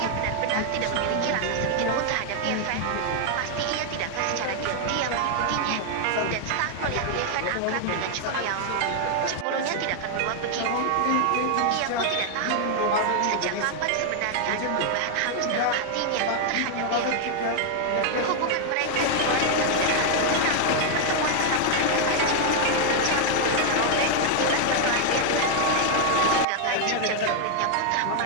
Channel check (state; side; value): different; both; correlation 0.00